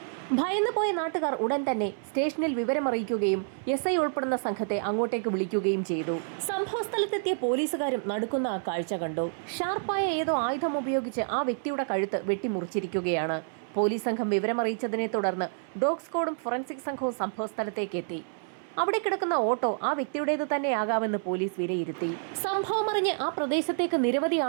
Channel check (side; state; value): left; silent; 59 dB below the other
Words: ഭയന്നു പോയ നാട്ടുകാർ ഉടൻ തന്നെ സ്റ്റേഷനിൽ വിവരമറിയിക്കുകയും SI ഉൾപ്പെടുന്ന സംഘത്തെ അങ്ങോട്ടേക്ക് വിളിക്കുകയും ചെയ്തു. സംഭവ സ്ഥലത്തെത്തിയ പോലീസുകാരും നടുക്കുന്ന ആ കാഴ്ച കണ്ടു. ഷാർപ്പായ ഏതോ ആയുധം ഉപയോഗിച്ച് ആ വ്യക്തിയുടെ കഴുത്ത് വെട്ടിമുറിച്ചിരിക്കുകയാണ്. പോലീസ് സംഘം വിവരമറിയിച്ചതിനെ തുടർന്ന് ഡോഗ് സ്ക്വാഡും ഫോറൻസിക് സംഘവും സംഭവ സ്ഥലത്തേക്ക് എത്തി. അവിടെ കിടക്കുന്ന ഓട്ടോ ആ വ്യക്തിയുടേത് തന്നെയാകാമെന്ന് പോലീസ് വിലയിരുത്തി. സംഭവമറിഞ്ഞ് ആ പ്രദേശത്തേക്ക് നിരവധി